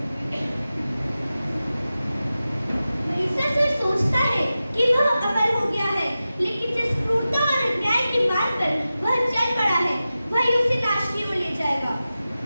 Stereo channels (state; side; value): inverted; both; correlation -0.94